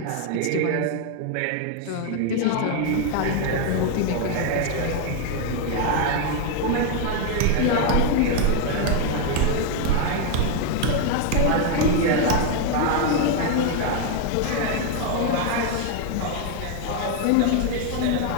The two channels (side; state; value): both; different; correlation 0.00